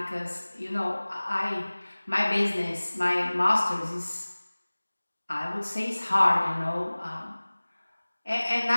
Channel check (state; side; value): inverted; both; correlation -1.00